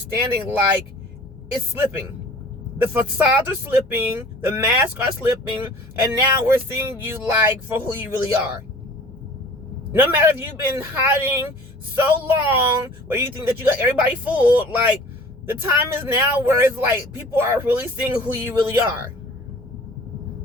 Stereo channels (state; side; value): normal; both; correlation 0.47